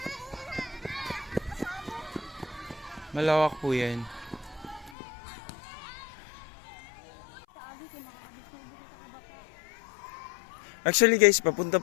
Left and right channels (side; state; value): right; drops out; at 5.0 s